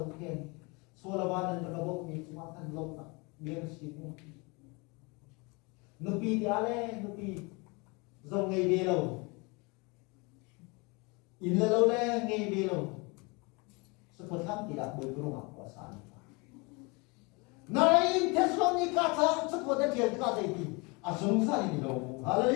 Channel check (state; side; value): quieter; right; 28.4 dB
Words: khen so la ba nan ka bo mi ma kan lo na bien si ni nupi ti ale nupi zo ngai be lo in la lo le ngai be lo seperti tidak bergerak kuasa. Naik Thessalonika tak seperti dia kata itu. Asumsa ini loh.